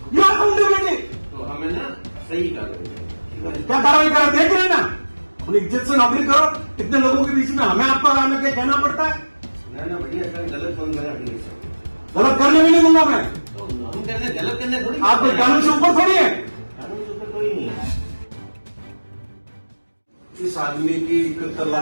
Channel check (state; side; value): inverted; both; correlation -1.00